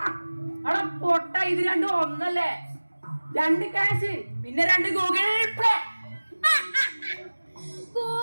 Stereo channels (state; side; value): inverted; both; correlation -1.00